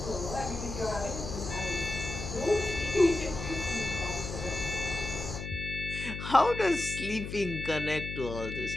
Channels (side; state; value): left; noise; hum, 7 dB below the sound